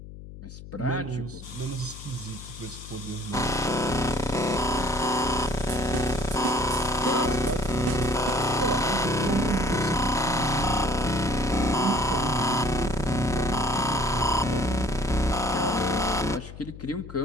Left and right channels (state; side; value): noise; left; hum, 14 dB below the sound